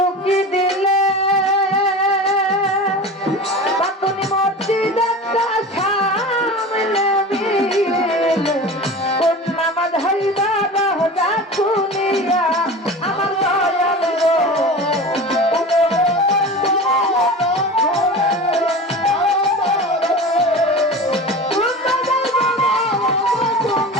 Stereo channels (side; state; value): both; normal; correlation 0.33